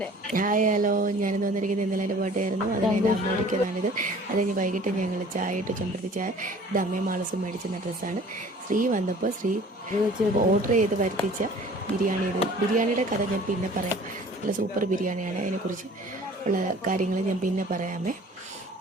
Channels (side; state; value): both; normal; correlation 0.48